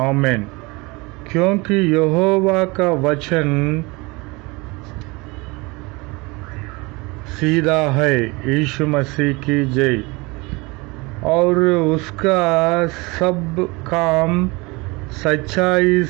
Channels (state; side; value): quieter; left; 25.3 dB